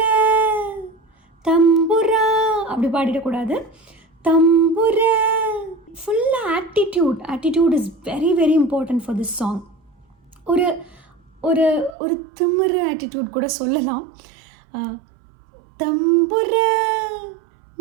தம்புரா அப்படி பாடிடக்கூடாது. தம்புர. ஃபுல்லாக attitude is very very important for this song. ஒரு ஒரு ஒரு திமிரு ஆட்டிடியூட் கூட சொல்லலாம். தம்புர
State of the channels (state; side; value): drops out; left; at 12.0 s